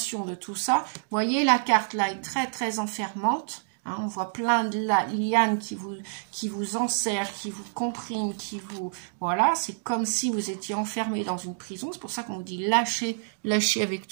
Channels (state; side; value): silent; left; digital silence